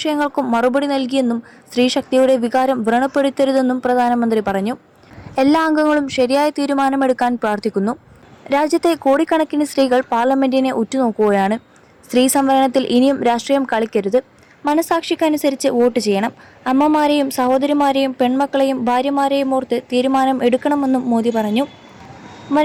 മറുപടി നൽകിയെന്നും സ്ത്രീശക്തിയുടെ വികാരം വ്രണപ്പെടുത്തരുതെന്നും പ്രധാനമന്ത്രി പറഞ്ഞു. എല്ലാ അംഗങ്ങളും ശരിയായ തീരുമാനമെടുക്കാൻ പ്രാർത്ഥിക്കുന്നു. രാജ്യത്തെ കോടിക്കണക്കിന് സ്ത്രീകൾ പാർലമെന്റിനെ ഉറ്റുനോക്കുകയാണ്. സ്ത്രീ സംവരണത്തിൽ ഇനിയും രാഷ്ട്രീയം കളിക്കരുത്. മനസാക്ഷിക്കനുസരിച്ച് വോട്ട് ചെയ്യണം. അമ്മമാരെയും സഹോദരിമാരെയും പെൺമക്കളെയും ഭാര്യമാരെയും ഓർത്ത് തീരുമാനം എടുക്കണമെന്നും മോദി പറഞ്ഞു.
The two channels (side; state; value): both; identical; correlation 1.00